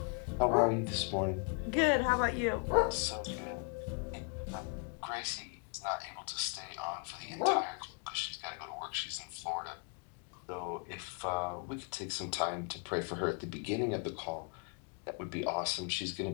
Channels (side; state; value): right; quieter; 37.6 dB